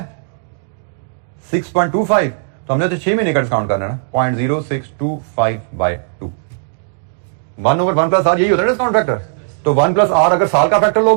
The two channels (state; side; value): silent; left; digital silence